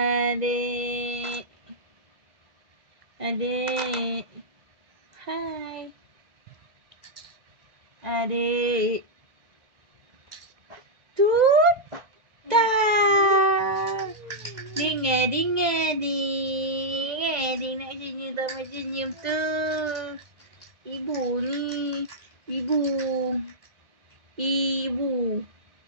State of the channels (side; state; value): left; late; 2.0 ms